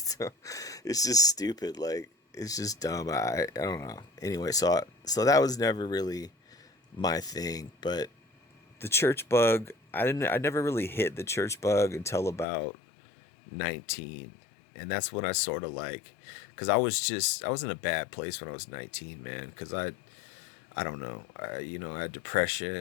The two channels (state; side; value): drops out; right; at 12.5 s